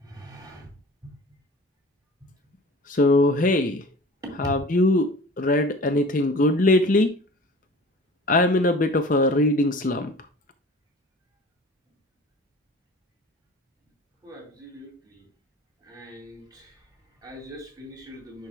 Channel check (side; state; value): both; normal; correlation 0.42